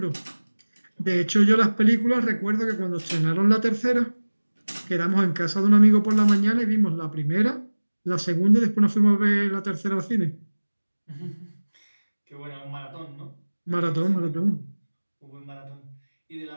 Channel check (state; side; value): inverted; both; correlation -1.00